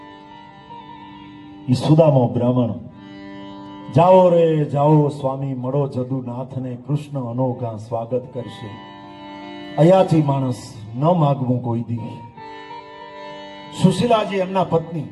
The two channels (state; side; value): identical; both; correlation 1.00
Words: ઈ સુદામો બ્રાહ્મણ, જાઓ રે જાઓ સ્વામી મળો જદુનાથને, કૃષ્ણ અનોખા સ્વાગત કરશે. અયાથી માણસ ન માગવું કોઈ દી. સુશીલાજી એમના પત્ની,